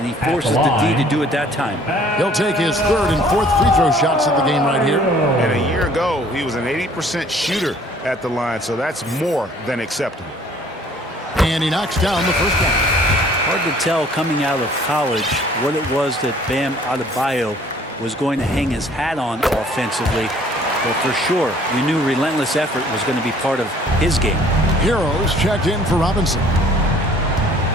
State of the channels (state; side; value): normal; both; correlation 0.56